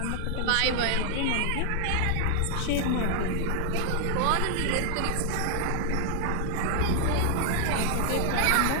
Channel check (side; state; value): both; different; correlation 0.00